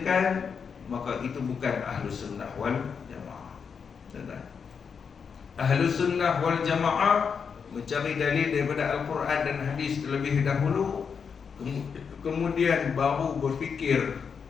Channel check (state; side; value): quieter; right; 6.3 dB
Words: maka itu bukan Ahlus Sunnah wal Jamaah. Ahlus Sunnah wal Jamaah mencari dalil daripada Al-Quran dan hadis terlebih dahulu, kemudian baru berfikir